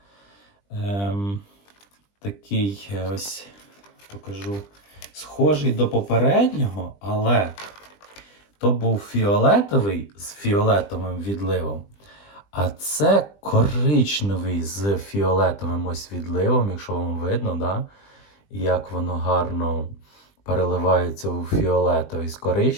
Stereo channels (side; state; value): right; late; 20 ms